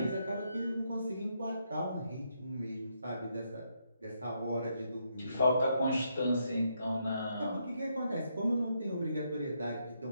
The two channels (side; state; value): both; inverted; correlation -0.78